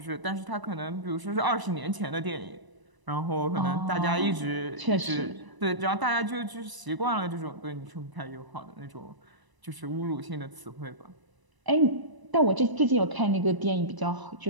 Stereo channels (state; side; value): late; left; 1.0 ms